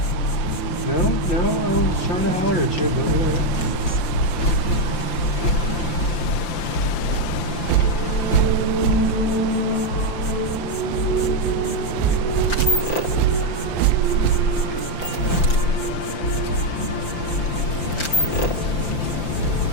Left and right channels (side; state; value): right; late; 5.8 ms